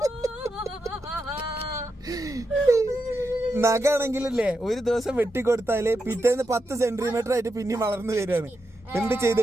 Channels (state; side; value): normal; both; correlation 0.86